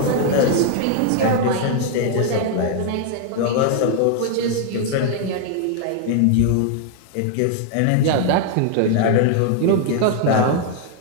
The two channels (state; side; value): different; both; correlation 0.00